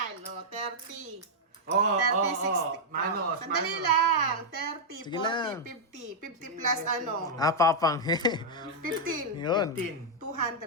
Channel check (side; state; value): both; normal; correlation -0.04